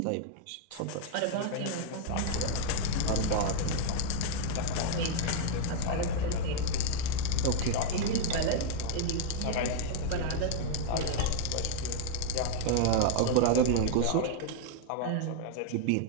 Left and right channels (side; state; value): both; different; correlation 0.00